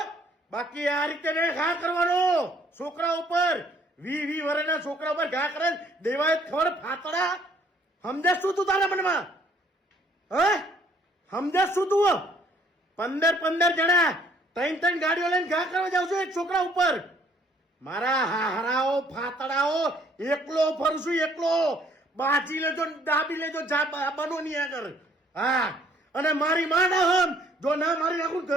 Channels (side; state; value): both; normal; correlation 0.62